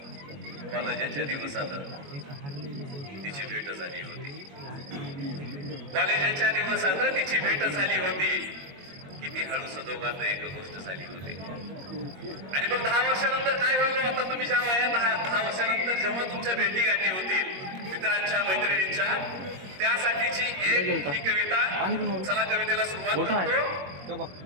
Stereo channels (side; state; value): left; late; 21 ms